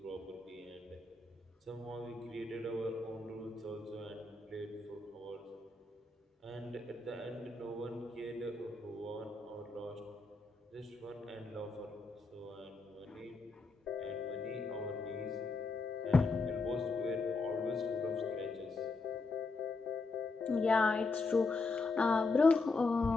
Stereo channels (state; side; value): quieter; right; 3.6 dB